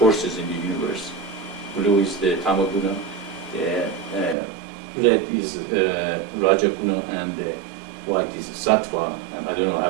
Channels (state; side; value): drops out; left; at 4.4 s